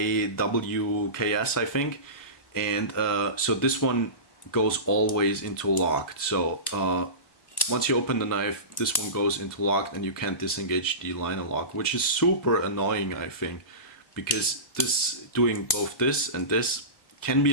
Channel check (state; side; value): late; right; 1.1 ms